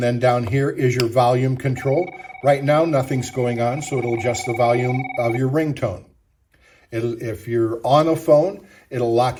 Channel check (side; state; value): both; identical; correlation 1.00